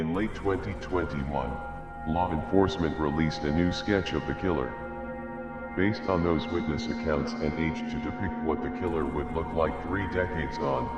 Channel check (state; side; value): identical; both; correlation 1.00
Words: late 2021, law enforcement released a new sketch of the killer. Based on those witness accounts and age to depict what the killer would look like 3 decades